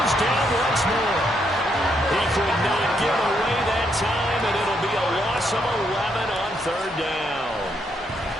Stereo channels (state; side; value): normal; both; correlation 0.76